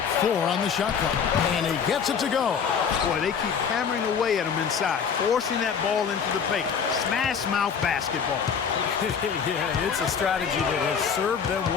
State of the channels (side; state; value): right; quieter; 6.8 dB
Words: 4 on the shot clock. And he gets it to go. Boy, they keep hammering away at him inside, forcing that ball into the paint. Smash mouth basketball. Yeah, it's a strategy that has served them